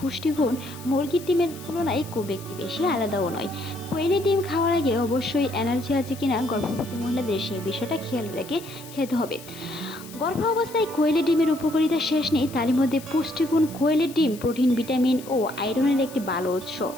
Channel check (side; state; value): left; noise; hiss, 17 dB below the sound